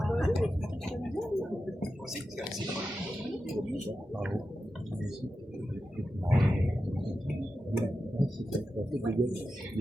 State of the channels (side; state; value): both; normal; correlation 0.91